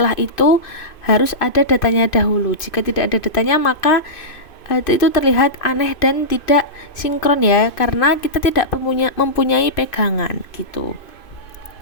itu harus ada datanya dahulu. Jika tidak ada datanya, maka itu terlihat aneh dan tidak sinkron ya, karena kita tidak mempunyai pegangan gitu.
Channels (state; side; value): late; right; 2.5 ms